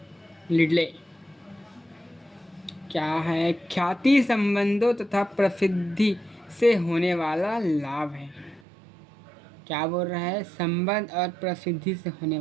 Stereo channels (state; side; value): drops out; left; at 8.6 s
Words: लिडले। क्या है? ख्याति संबंधों तथा प्रसिद्धि से होने वाला लाभ है। क्या बोल रहा है? संबंध और प्रसिद्धि से होने